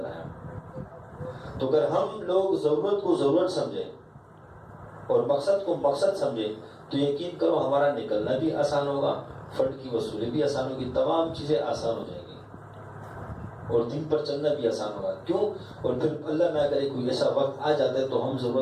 تو اگر ہم لوگ ضرورت کو ضرورت سمجھیں اور مقصد کو مقصد سمجھیں تو یقین کرو ہمارا نکلنا بھی آسان ہوگا, فنڈ کی وصولی بھی آسان ہوگی, تمام چیزیں آسان ہو جائیں گی, اور دین پر چلنا بھی آسان ہوگا. کیوں؟ اور پھر اللہ نہ کرے کوئی ایسا وقت آ جاتا ہے تو ہم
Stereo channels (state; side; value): identical; both; correlation 1.00